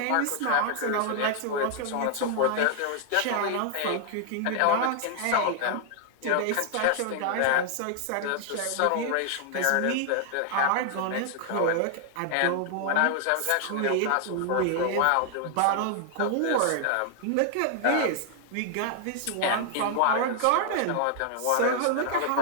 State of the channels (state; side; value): different; both; correlation 0.00